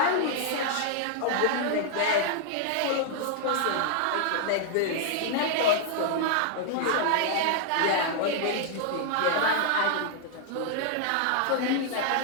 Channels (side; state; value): both; different; correlation 0.00